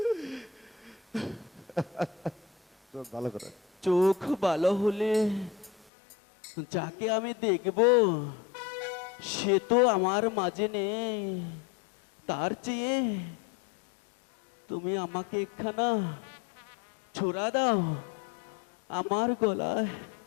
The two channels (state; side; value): drops out; right; at 5.9 s